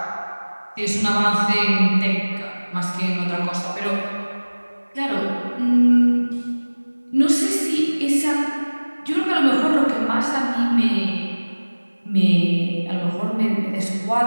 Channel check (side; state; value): both; inverted; correlation -1.00